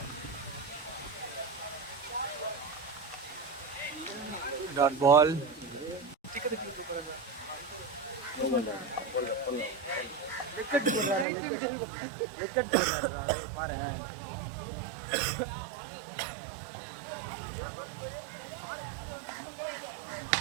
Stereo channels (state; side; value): drops out; left; at 11.2 s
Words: Dot ball. பாரு.